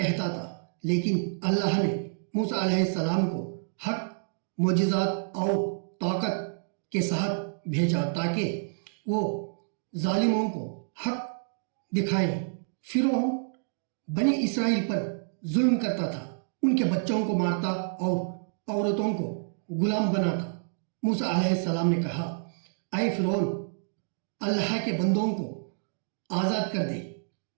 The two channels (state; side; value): silent; left; digital silence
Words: تھا، لیکن اللہ نے موسیٰ علیہ السلام کو حق، معجزات اور طاقت کے ساتھ بھیجا تاکہ وہ ظالموں کو حق دکھائیں۔ فرعون بنی اسرائیل پر ظلم کرتا تھا، ان کے بچوں کو مارتا اور عورتوں کو غلام بناتا۔ موسیٰ علیہ السلام نے کہا، اے فرعون، اللہ کے بندوں کو آزاد کر دے